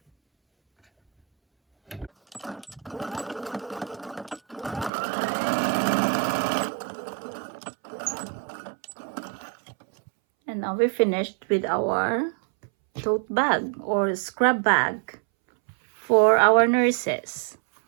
And now we're finished with our tote bag or scrap bag for our nurses.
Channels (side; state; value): left; drops out; at 4.9 s